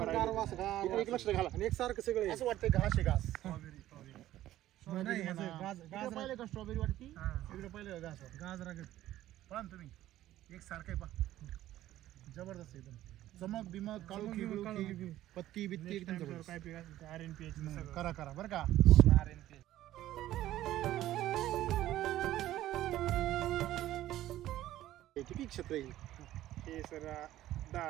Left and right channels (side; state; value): left; quieter; 14.0 dB